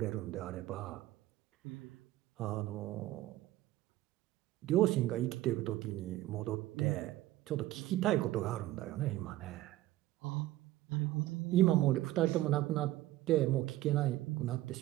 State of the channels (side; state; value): left; quieter; 15.7 dB